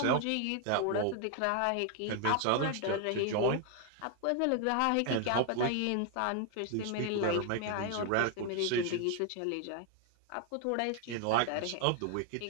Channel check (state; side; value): different; both; correlation 0.01